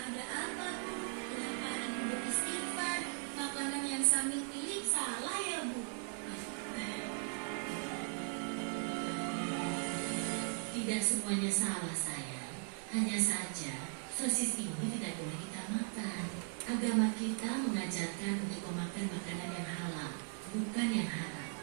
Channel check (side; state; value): left; silent; 52 dB below the other